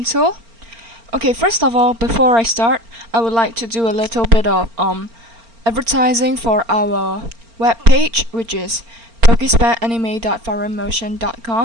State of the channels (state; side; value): late; left; 4.4 ms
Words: Okay, first of all, before I start, I would like to do a little bit of advertising for our webpage, which is